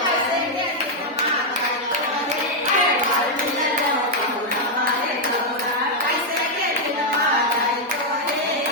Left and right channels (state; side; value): normal; both; correlation -0.01